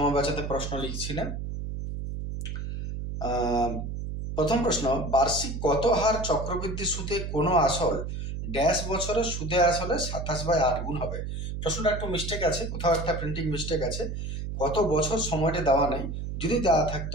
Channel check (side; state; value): right; noise; hum, 5 dB below the sound